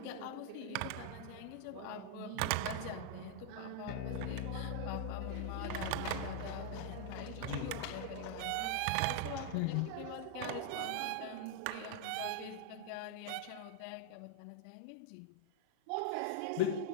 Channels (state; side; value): different; both; correlation -0.01